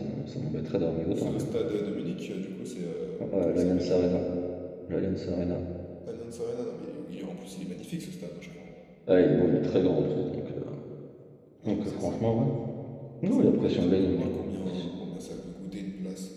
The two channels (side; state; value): both; identical; correlation 1.00